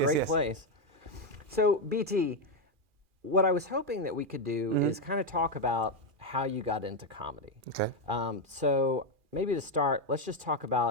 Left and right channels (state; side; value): late; left; 2.4 ms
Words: yes, great yes. place. So, BT, what I was hoping that we could do Mm-hmm. is kind of talk about how you got into comedy. Okay. So maybe to start, let's just talk